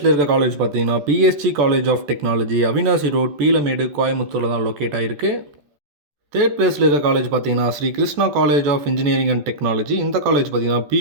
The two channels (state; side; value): late; left; 14 ms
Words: இருக்க காலேஜ் பார்த்தீங்கன்னா PSG college of technology, Avinashi road, Peelamedu, கோயம்புத்தூரில் தான் லொக்கேட் ஆகிருக்கு. தேர்ட் பிளேஸில் இருக்க காலேஜ் பார்த்தீங்கன்னா Sri Krishna college of engineering and technology. இந்த காலேஜ் பார்த்தீங்கன்னா